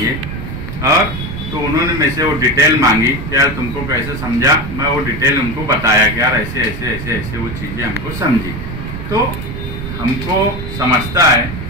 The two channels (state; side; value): noise; right; rumble, 7 dB below the sound